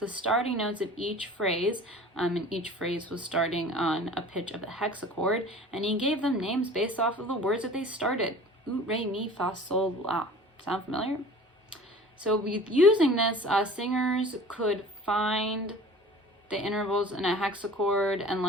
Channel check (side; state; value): both; normal; correlation 0.44